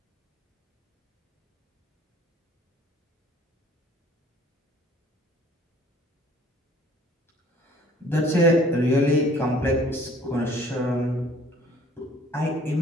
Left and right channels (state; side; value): normal; both; correlation 0.55